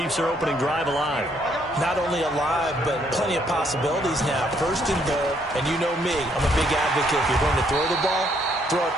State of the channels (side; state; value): both; normal; correlation 0.69